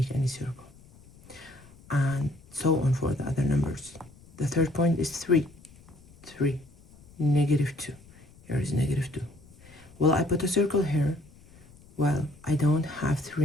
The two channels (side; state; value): left; noise; rumble, 24 dB below the sound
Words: any circle. And so on for the other numbers. The third point is 3. 3. Negative 2. Here is negative 2. Will I put a circle here? Well, I don't have 3